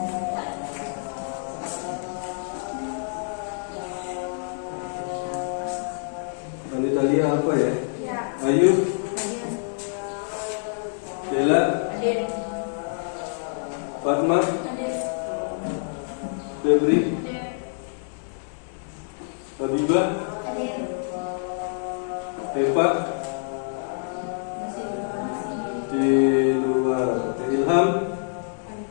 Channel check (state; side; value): silent; right; 61 dB below the other